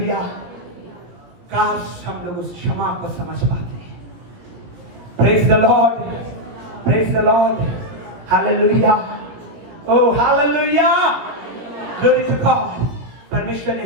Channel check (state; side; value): late; left; 17 ms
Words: काश हम लोग उस क्षमा को समझ पाते हैं। Praise the Lord, praise the Lord, hallelujah, oh hallelujah, glory to God. परमेश्वर ने